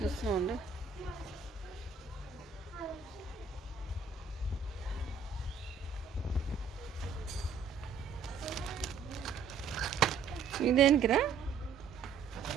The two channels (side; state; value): left; quieter; 5.8 dB